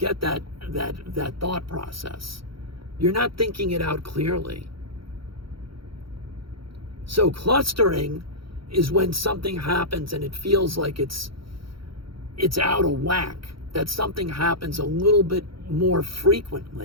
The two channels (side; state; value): left; late; 0.74 ms